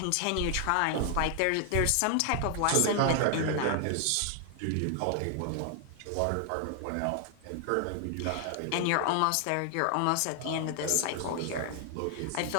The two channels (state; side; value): different; both; correlation 0.00